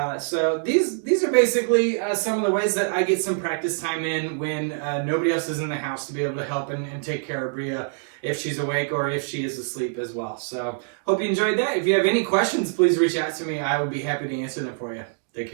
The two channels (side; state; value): left; silent; digital silence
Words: So these are basically some of the ways that I get some practice time in when nobody else is in the house to be able to help and take care of Bria if she's awake or if she is asleep as well. So hope you enjoyed that. If you have any questions, please reach out to me. I would be happy to answer them for you. Take